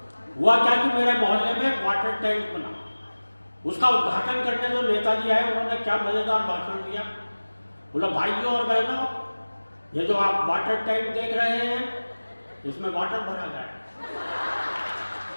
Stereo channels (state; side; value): inverted; both; correlation -1.00